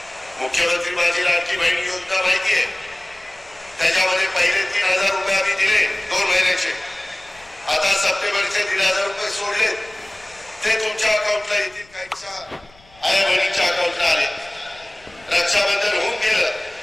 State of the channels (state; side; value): noise; left; rumble, 28 dB below the sound